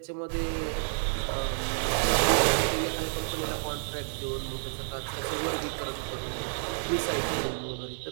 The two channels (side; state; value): left; silent; 58 dB below the other